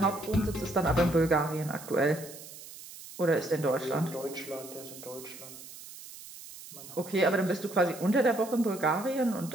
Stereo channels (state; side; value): noise; right; hiss, 15 dB below the sound